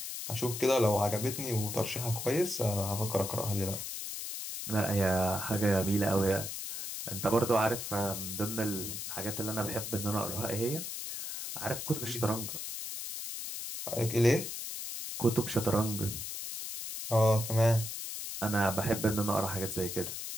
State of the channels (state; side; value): noise; left; hiss, 6 dB below the sound